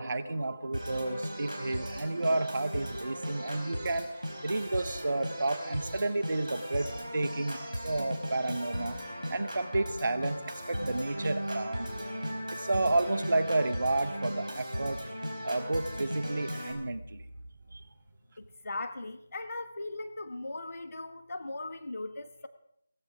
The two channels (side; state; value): both; inverted; correlation -0.93